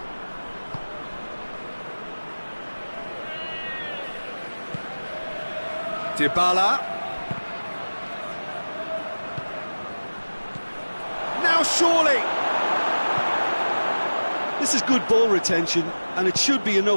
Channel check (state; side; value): inverted; both; correlation -1.00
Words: Dybala. surely! This is good ball retention, and it should be